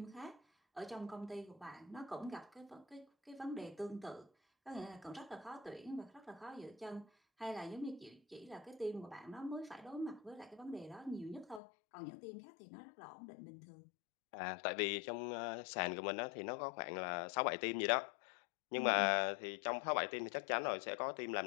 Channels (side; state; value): right; drops out; at 11.6 s